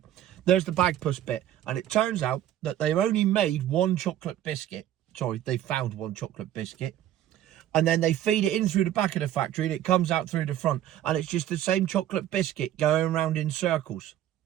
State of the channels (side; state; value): left; quieter; 12.0 dB